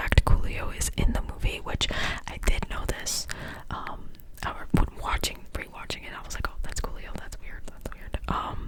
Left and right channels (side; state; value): both; identical; correlation 1.00